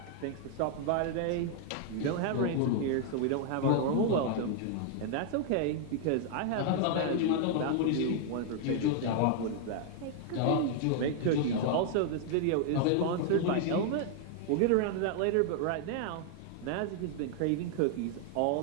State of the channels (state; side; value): different; both; correlation 0.00